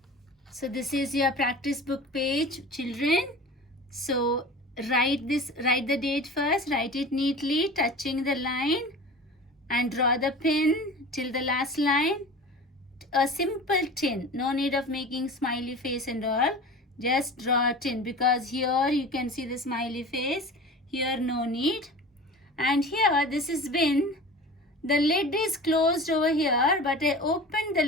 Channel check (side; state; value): both; normal; correlation 0.36